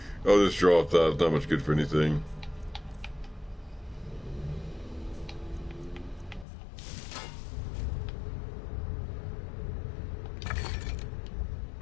Oh, this drop that. It's not much good for anything.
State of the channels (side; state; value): right; drops out; at 6.5 s